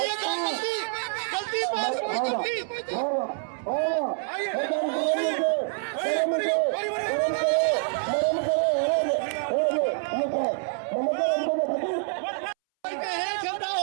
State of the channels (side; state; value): left; silent; 60 dB below the other